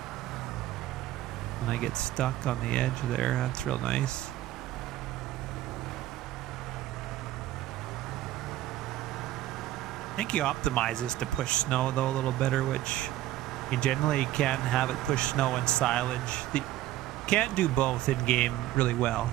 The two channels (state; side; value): quieter; left; 14.5 dB